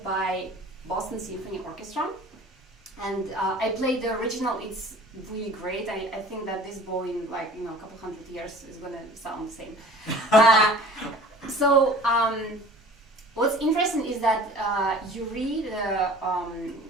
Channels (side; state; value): both; normal; correlation 0.45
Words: by Boston Symphony Orchestra, and I played the original. It's really great. I think that this bow in a couple hundred years is gonna sound the same. What's interesting is that Uri,